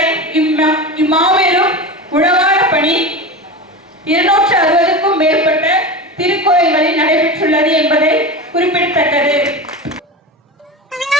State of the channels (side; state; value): both; normal; correlation 0.26